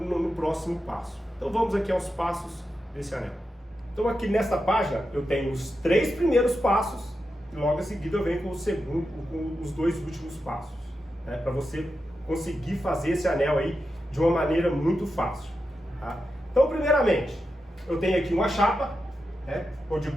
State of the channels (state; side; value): normal; both; correlation 0.89